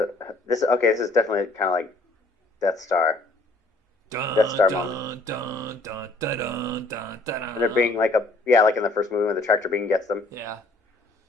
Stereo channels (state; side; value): quieter; right; 3.0 dB